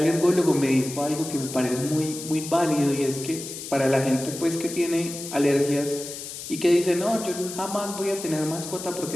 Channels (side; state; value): left; noise; hiss, 10 dB below the sound